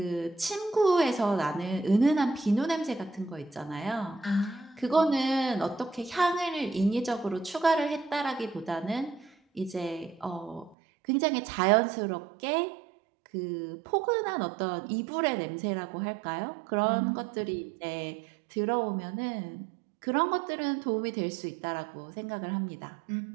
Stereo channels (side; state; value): left; drops out; at 10.8 s